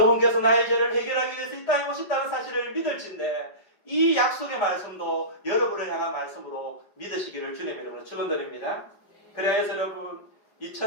나의 죄를 해결하기 위해서 이 땅에 오셨다는 사실을 믿을진데, 이 약속의 말씀도 여러분을 향한 말씀으로 믿으시기를 주님 여러분을 축원드립니다. 그래서 여러분,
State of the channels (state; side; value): late; right; 5.2 ms